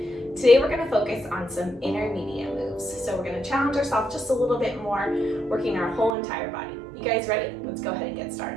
Today we're going to focus on some intermediate moves. So we're going to challenge ourselves just a little bit more, working our whole entire body. You guys ready? Let's go ahead and get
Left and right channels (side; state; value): left; drops out; at 6.2 s